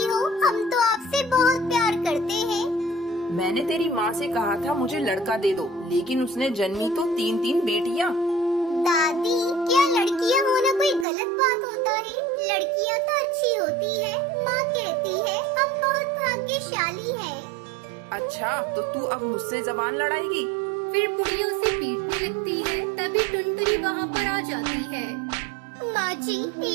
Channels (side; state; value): left; drops out; at 11.1 s